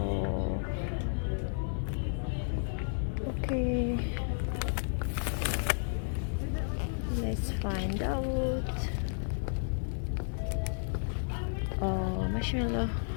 okay. Let's find out. Oh, marshmallow.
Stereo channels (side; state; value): right; silent; 56 dB below the other